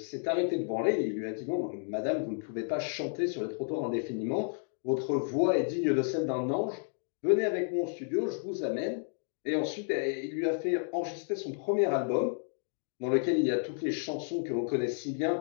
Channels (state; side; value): silent; right; digital silence